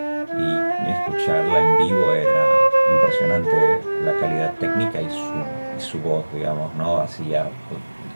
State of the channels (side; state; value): both; inverted; correlation -1.00